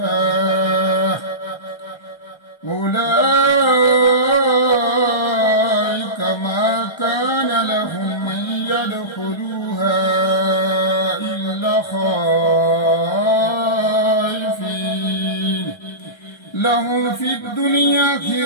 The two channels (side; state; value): right; late; 1.3 ms